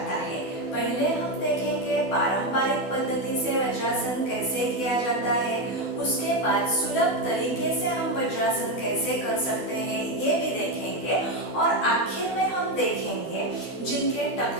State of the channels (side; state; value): right; late; 12 ms